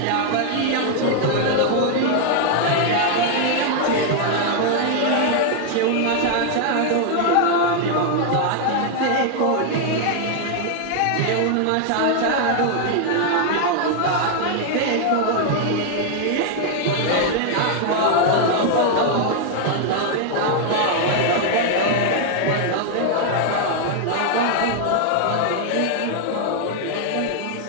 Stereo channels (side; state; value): both; different; correlation 0.00